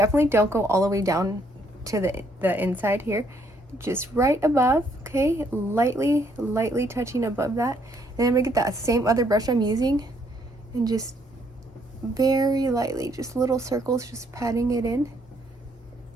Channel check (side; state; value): both; normal; correlation 0.69